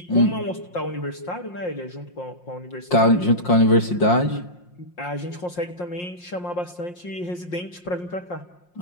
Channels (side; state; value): right; late; 5.6 ms